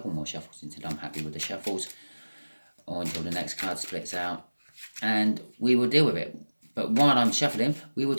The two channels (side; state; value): both; inverted; correlation -1.00